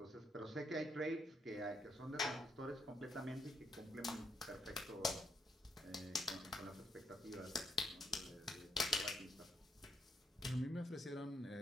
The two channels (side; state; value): both; normal; correlation 0.75